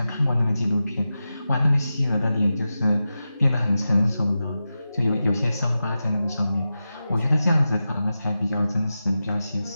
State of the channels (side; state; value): both; inverted; correlation -0.92